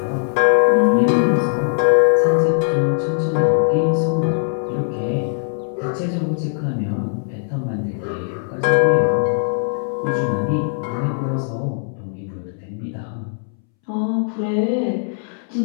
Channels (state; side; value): silent; right; 66 dB below the other